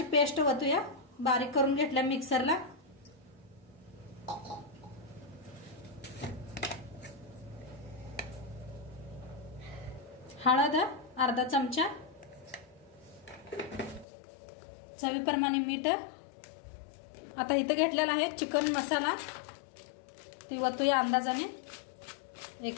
पेस्ट वतूया, बारीक करून घेतल्या मिक्सरला। हळद अर्धा चमचा, चवीप्रमाणे मीठ। आता इथं घेतलेला आहे चिकन मसाला, ती वतूया अंदाजाने 1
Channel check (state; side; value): drops out; right; at 14.1 s